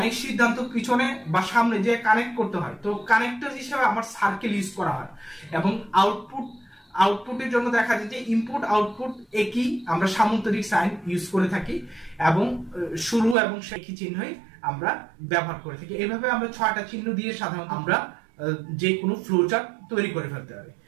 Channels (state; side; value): drops out; left; at 13.4 s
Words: সিদ্ধান্ত পিছনে বা সামনে যে কানেক্ট করতে হয়, তো কানেক্টর হিসেবে আমার সার্কেল ইউজ করা হয়। এবং আউটপুটের জন্য দেখা যায় যে ইনপুট আউটপুট একই, আমরা সামান্তরিক সাইন ইউজ করে থাকি এবং শুরু এবং একই চিহ্নই আমরা ব্যবহার করে থাকি। এইভাবে আমরা 6টা চিহ্ন দিয়ে সাধারণত আমরা যে কোনো ফ্লোচার্ট তৈরি করে ফেলতে পারি।